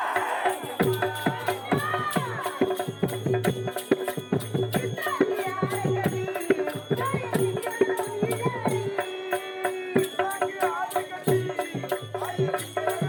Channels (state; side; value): identical; both; correlation 1.00